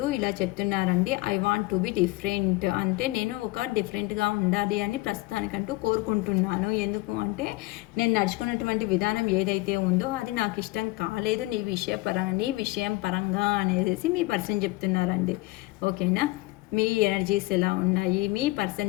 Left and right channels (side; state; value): right; quieter; 21.3 dB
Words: ఇలా చెప్తున్నారండి. I want to be different అంటే నేను ఒక డిఫరెంట్గా ఉండాలి అని ప్రస్తుతానికంటూ కోరుకుంటున్నాను. ఎందుకు అంటే నేను నడుచుకున్నటువంటి విధానం ఏదైతే ఉందో అది నాకు ఇష్టం కాలేదు నీ విషయం పరంగా అనేసి మీ పర్సన్ చెప్తున్నారండి. ఓకేనా, మీ ఎనర్జీస్ ఎలా ఉన్నాయి, మీ